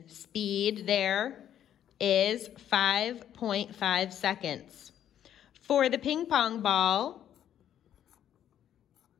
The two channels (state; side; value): quieter; right; 10.4 dB